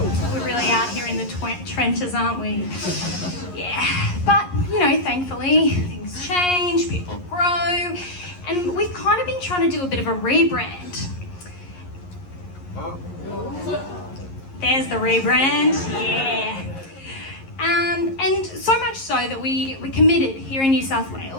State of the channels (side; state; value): right; late; 11 ms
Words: really out here in the trenches, aren't we? Yeah, but, you know, thankfully, things change, people grow, and we've kind of been trying to do a bit of a rebrand. There's the rebrand, yeah. And so much so that we're committed here in New South